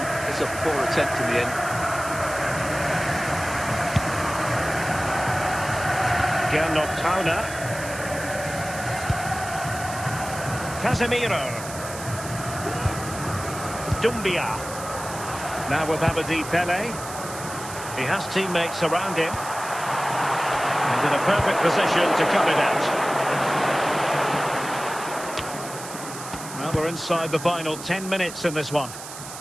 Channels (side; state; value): right; noise; hiss, 11 dB below the sound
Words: It's a poor attempt in the end. Gernot Tauna. Casemiro. Dumbia. Now with Abedi Pele. He has teammates around him. And in a perfect position to cut it out. Well, we're inside the final 10 minutes in this one.